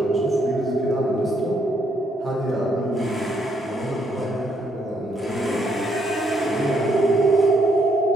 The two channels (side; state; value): both; normal; correlation 0.73